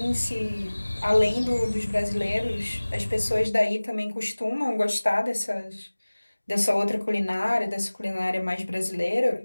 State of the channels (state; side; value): inverted; both; correlation -1.00